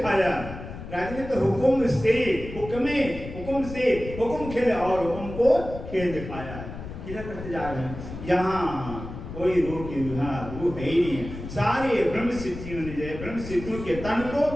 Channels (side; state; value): left; noise; rumble, 10 dB below the sound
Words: राजा ने तो हुक्म से हुक्म खेल और हुक्म को खेल दिखाया। क्या करते जा रहे हैं? यहाँ कोई रूह की रूह है ही नहीं है। सारे ब्रह्म सिद्धियों ने जो ब्रह्म सिद्धियों के तन को